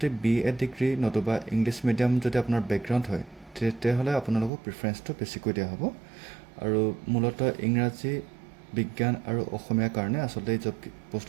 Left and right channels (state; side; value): drops out; left; at 4.5 s